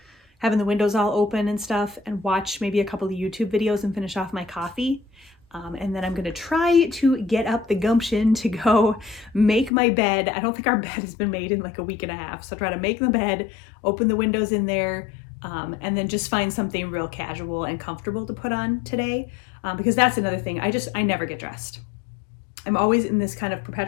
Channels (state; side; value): drops out; right; at 9.7 s